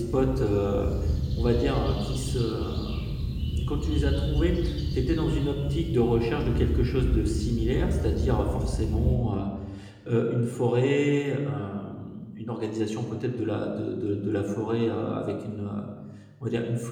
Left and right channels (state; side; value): identical; both; correlation 1.00